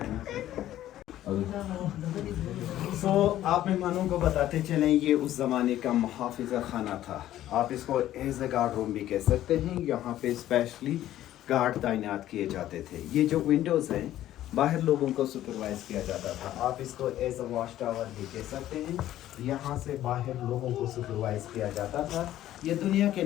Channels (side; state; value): right; quieter; 13.2 dB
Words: सो आप मेहमानों को बताते चलें, ये उस ज़माने का मुहाफ़िज़ा खाना था। आप इसको एज ए गार्ड रूम भी कह सकते हैं। यहाँ पे स्पेशली गार्ड तैनात किए जाते थे। ये जो विंडोज़ हैं, बाहर लोगों को सुपरवाइज़ किया जाता था। आप इसको एज ए वॉच टावर भी कह सकते हैं। यहाँ से बाहर लोगों को सुपरवाइज़ किया जाता था। ये दुनिया के